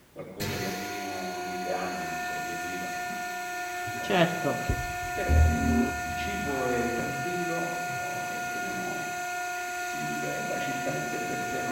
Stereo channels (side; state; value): both; identical; correlation 1.00